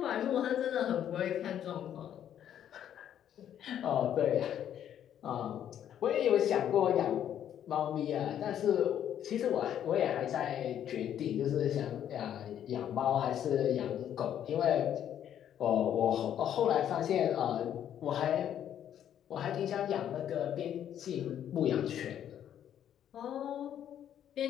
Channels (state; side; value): quieter; right; 10.2 dB